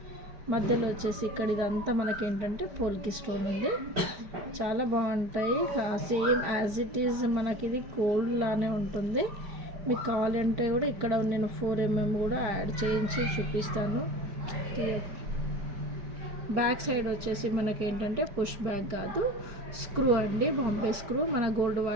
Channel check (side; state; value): left; late; 5.0 ms